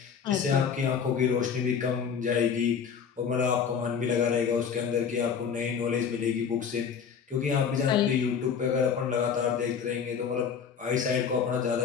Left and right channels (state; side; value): quieter; right; 6.9 dB